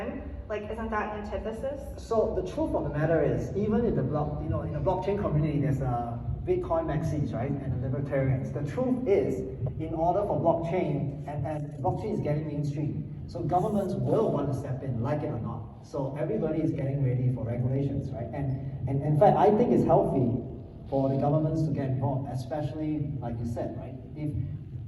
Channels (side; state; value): both; identical; correlation 1.00